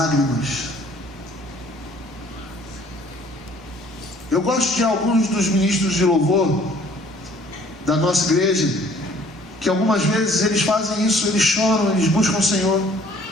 Eu gosto de alguns dos ministros de louvor da nossa igreja, que algumas vezes eles fazem isso, eles choram, eles buscam o Senhor,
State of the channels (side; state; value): both; normal; correlation 0.56